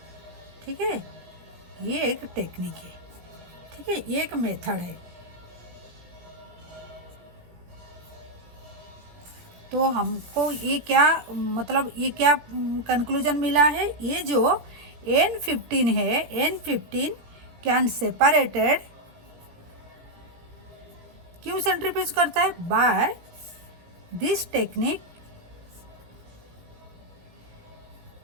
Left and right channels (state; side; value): late; left; 17 ms